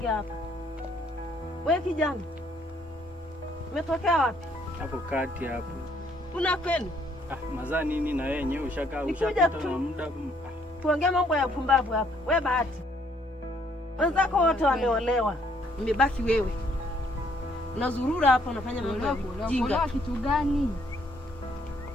hapa. Wewe kijana. Umetokea wapi? Hapo kati hapo. Una kwenu? Mazaa nini na wewe yenyewe ushapita na muda. Tuongee mambo ya pumbavu hapa. Wewe Bahati. Wenzako wote wameolewa. Umebaki wewe. Unazurura hapa unafanya mambo ya jinga. Kitu gani?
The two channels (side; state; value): both; normal; correlation 0.67